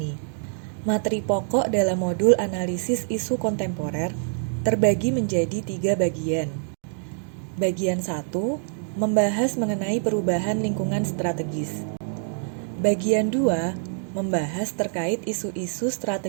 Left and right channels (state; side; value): silent; left; digital silence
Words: Materi pokok dalam modul analisis isu kontemporer terbagi menjadi 3 bagian. Bagian 1 membahas mengenai perubahan lingkungan strategis. Bagian 2 membahas terkait isu-isu